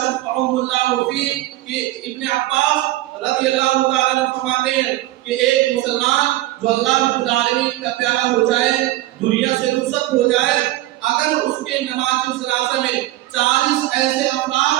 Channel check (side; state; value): left; quieter; 16.3 dB